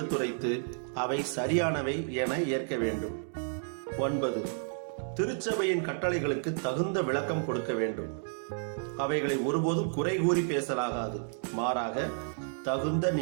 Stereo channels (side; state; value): left; silent; digital silence